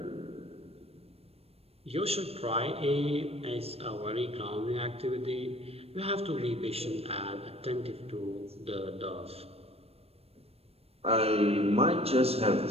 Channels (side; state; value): left; late; 0.29 ms